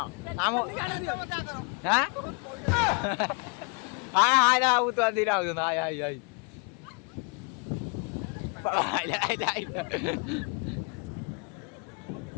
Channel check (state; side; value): quieter; right; 35.1 dB